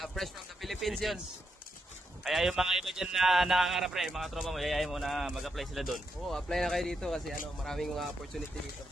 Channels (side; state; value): both; normal; correlation 0.82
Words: Fresh from the Philippines yun. Kaya yung mga iba dyan na nangangarap, pre, mga tropa mo, yayayin mo na mag-apply sila doon. Oo, apply na kayo dito kasi maraming mga opportunity dito.